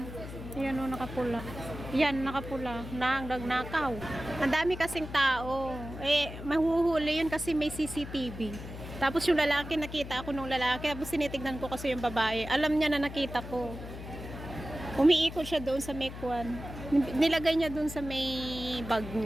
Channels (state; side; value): noise; left; hum, 11 dB below the sound